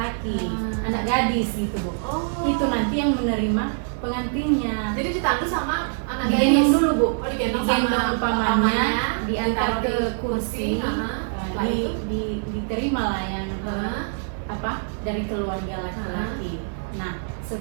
anak gadis gitu Bu. Oh. Itu nanti yang menerima pengantinnya. Jadi ditandu sama anak Digendong gadis dulu Bu, Oh, digendong digendong sama pamannya, diantar ditaruh ke di kursi, Setelah itu? diterima lah yang Hah? apa dari keluarga laki-laki. Nah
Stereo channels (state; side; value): silent; left; digital silence